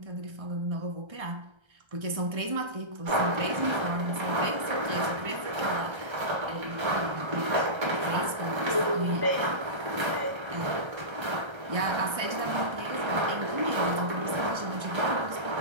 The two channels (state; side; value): late; left; 1.3 ms